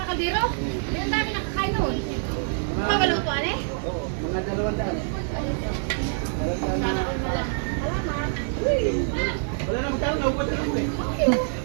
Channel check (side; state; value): left; silent; digital silence